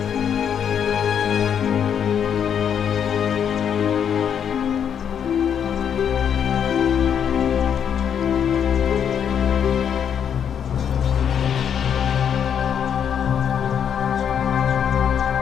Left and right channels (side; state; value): right; quieter; 8.3 dB